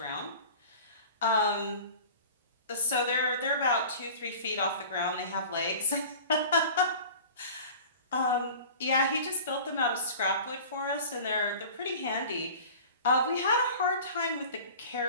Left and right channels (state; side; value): inverted; both; correlation -0.40